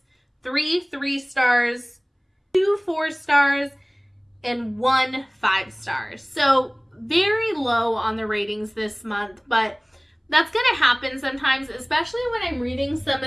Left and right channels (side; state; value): both; identical; correlation 1.00